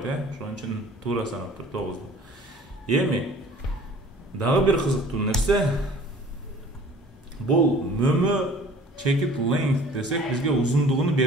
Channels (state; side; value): normal; both; correlation 0.49